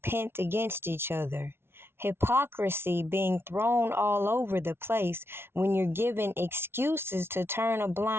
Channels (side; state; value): left; late; 0.12 ms